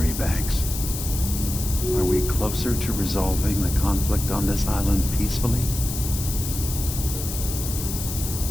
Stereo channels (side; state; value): left; noise; hiss, 6 dB below the sound